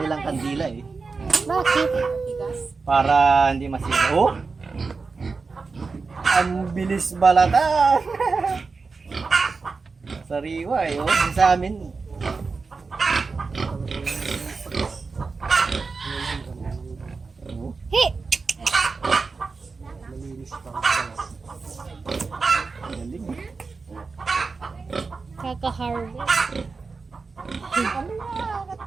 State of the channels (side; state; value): left; quieter; 4.4 dB